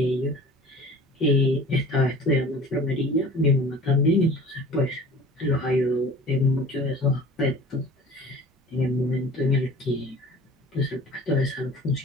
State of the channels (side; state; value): both; normal; correlation 0.44